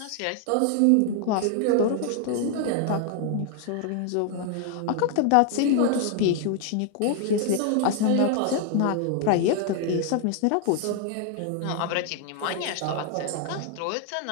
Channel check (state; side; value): different; both; correlation 0.00